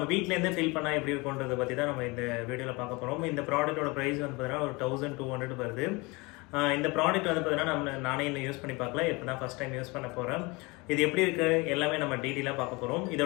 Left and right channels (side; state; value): right; quieter; 25.5 dB